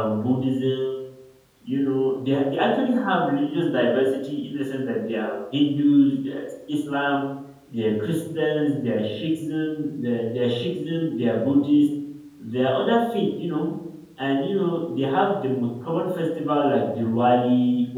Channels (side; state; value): both; identical; correlation 1.00